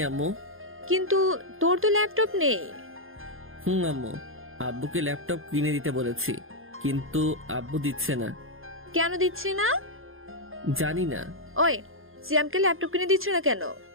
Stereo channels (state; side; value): late; left; 0.60 ms